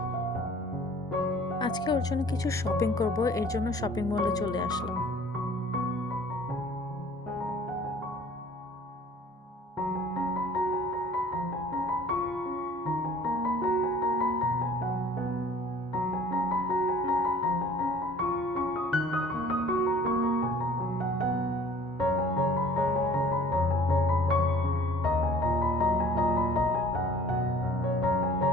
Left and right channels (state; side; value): normal; both; correlation 0.51